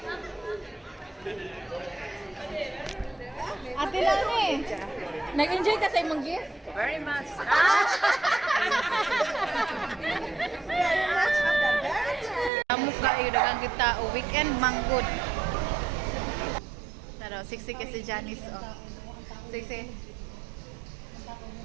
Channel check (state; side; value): drops out; left; at 12.5 s